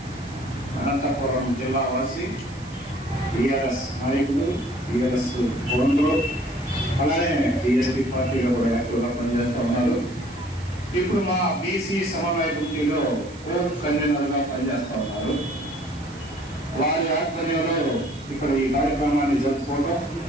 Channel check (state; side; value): noise; right; hiss, 21 dB below the sound